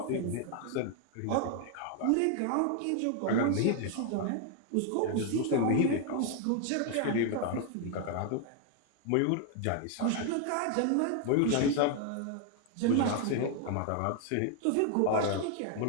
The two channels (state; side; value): different; both; correlation 0.00